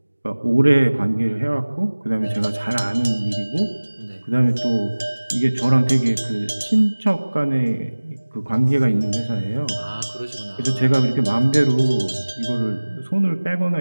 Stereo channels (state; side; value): inverted; both; correlation -1.00